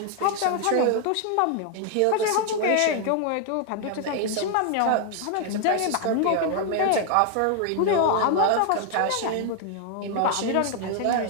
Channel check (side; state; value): both; different; correlation 0.00